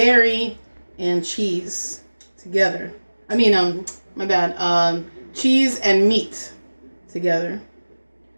and cheese together. I mean, my bad. Cheese and meat together.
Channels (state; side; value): inverted; both; correlation -1.00